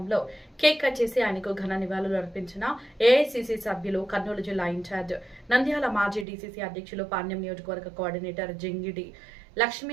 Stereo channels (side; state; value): left; drops out; at 6.2 s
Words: కేక్ కట్ చేసి ఆయనకు ఘన నివాళులు అర్పించిన ఏఐసిసి సభ్యులు, కర్నూలు జిల్లా ఇన్ఛార్జ్, నంద్యాల మాజీ డీసీసీ అధ్యక్షులు, పాణ్యం నియోజకవర్గ కోఆర్డినేటర్ జింగిడి లక్ష్మీ